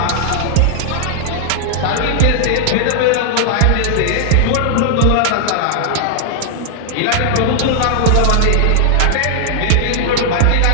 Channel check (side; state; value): both; different; correlation 0.00